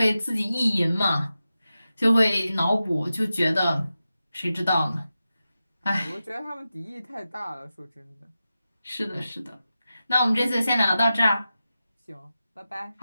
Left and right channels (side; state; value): both; inverted; correlation -0.92